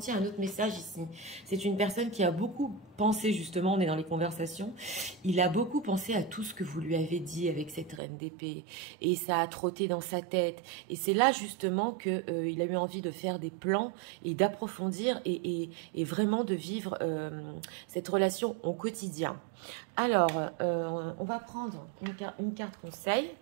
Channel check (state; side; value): drops out; left; at 8.0 s